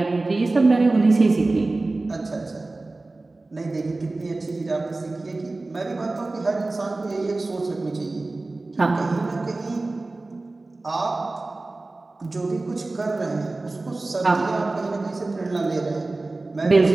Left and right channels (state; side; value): quieter; left; 3.2 dB